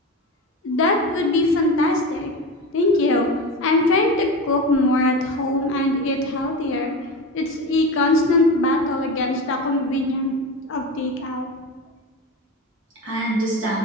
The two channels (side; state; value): both; normal; correlation 0.25